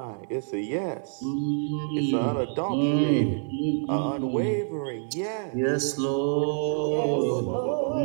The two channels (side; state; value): left; silent; digital silence